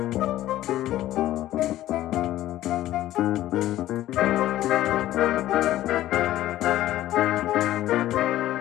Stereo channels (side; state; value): right; quieter; 14.2 dB